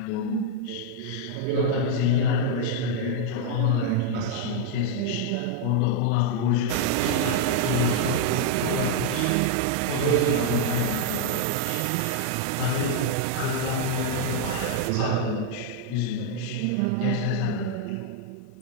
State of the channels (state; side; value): different; both; correlation 0.00